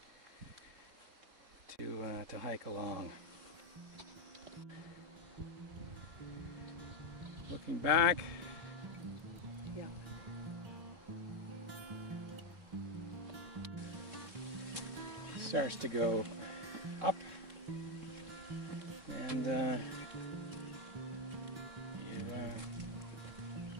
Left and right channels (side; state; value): left; late; 3.7 ms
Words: hike along. Looking back. Yeah. Starts to go up, and you